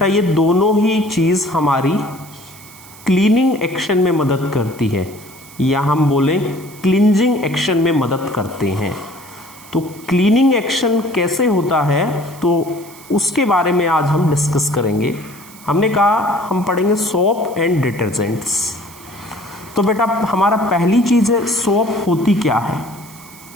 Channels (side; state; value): right; noise; hiss, 20 dB below the sound